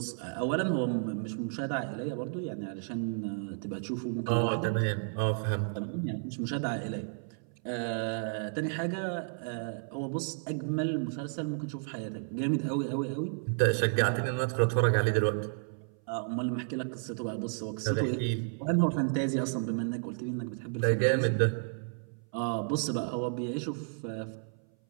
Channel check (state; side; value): silent; left; 56 dB below the other